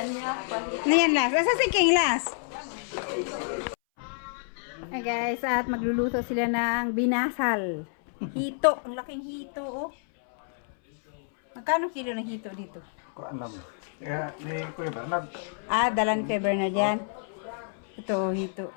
Na yan last. Asa siking last? Ay guys, at magluluto sila ng binasal. Hito. Ang laking hito, oh. Magkano kilo ng hito dito? Ko alam. Kaya ni Kuya Bernard. Dalan kay Bernard yan. Ito, hito.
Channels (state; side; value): silent; right; 59 dB below the other